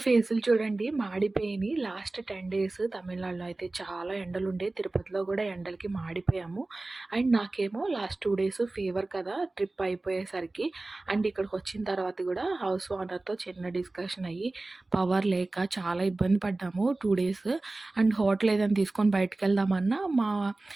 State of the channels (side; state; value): left; quieter; 3.0 dB